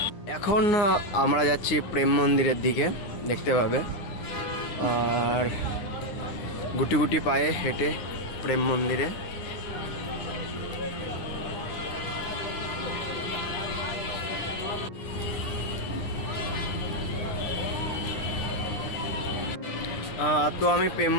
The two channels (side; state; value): right; late; 9.8 ms